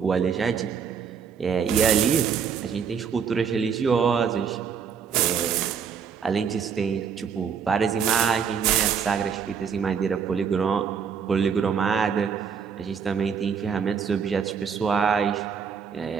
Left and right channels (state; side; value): quieter; left; 6.8 dB